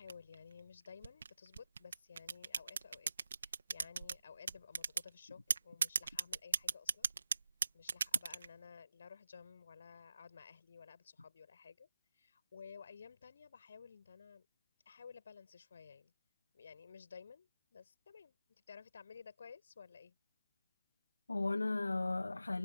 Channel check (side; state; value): both; inverted; correlation -0.91